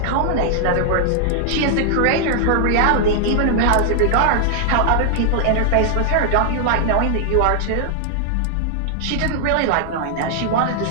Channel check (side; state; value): both; different; correlation 0.00